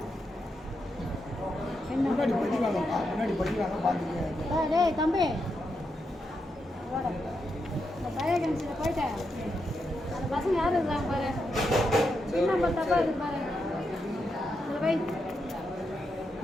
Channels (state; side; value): normal; both; correlation 0.84